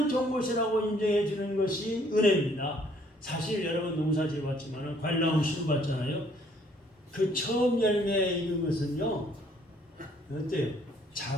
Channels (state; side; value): normal; both; correlation 0.63